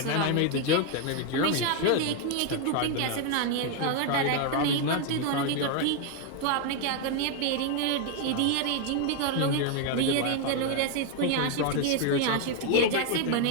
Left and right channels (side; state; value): both; different; correlation 0.01